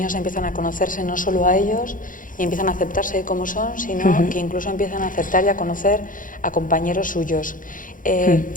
empiezan a conocerse no solo a ellos y empiezan a aceptarse como son, sino que incluso empiezan a aceptar y a conocer a compañeros suyos.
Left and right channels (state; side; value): late; right; 0.39 ms